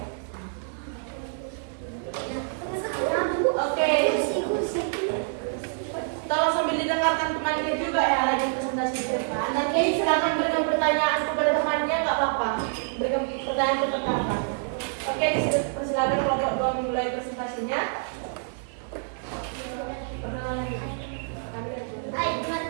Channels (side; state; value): left; silent; 60 dB below the other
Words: Oke, silakan berikan pertanyaan kepada temannya, nggak apa-apa. Berikan pertanyaan ke teman. Oke, persilakan kelompok 2 memulai presentasinya. Perkenalan kami Hai